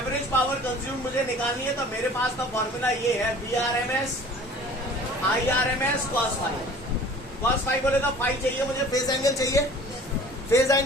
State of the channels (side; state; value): both; normal; correlation 0.47